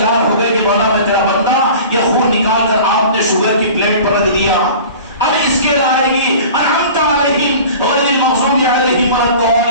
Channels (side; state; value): both; inverted; correlation -0.41